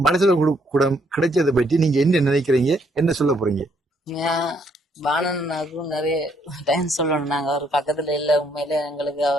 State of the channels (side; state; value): both; normal; correlation 0.70